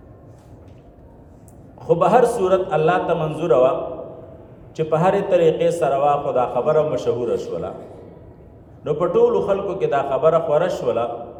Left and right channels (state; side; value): identical; both; correlation 1.00